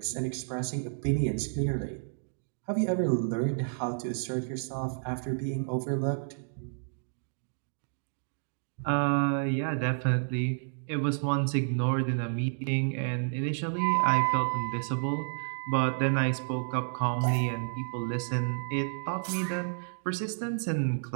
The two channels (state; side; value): silent; left; digital silence